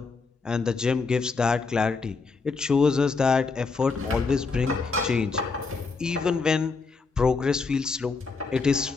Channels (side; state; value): right; quieter; 4.4 dB